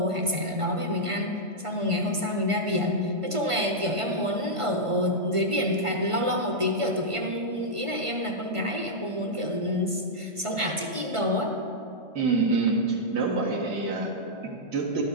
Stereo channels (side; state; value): left; late; 1.5 ms